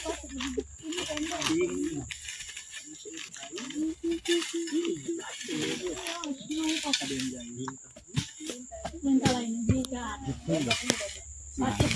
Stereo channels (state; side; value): identical; both; correlation 1.00